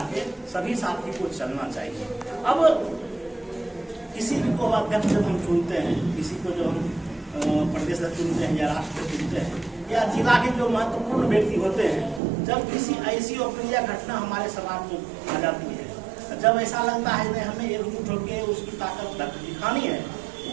के सभी साथी को चलना चाहिए। अब किसी को अध्यक्ष जब हम चुनते हैं, किसी को जो हम प्रदेश चुनते हैं या राष्ट्र चुनते हैं या जिला के जो महत्वपूर्ण व्यक्ति होते हैं, जब किसी ऐसी अप्रिय घटना हमारे समाज में आ जाती है, जब ऐसा लगता है कि हमें एकजुट होकर उसकी ताकत दिखानी है,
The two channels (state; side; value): drops out; left; at 12.2 s